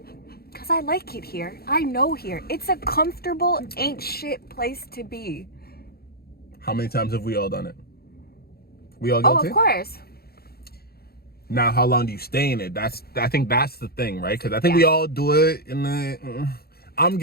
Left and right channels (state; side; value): late; right; 0.45 ms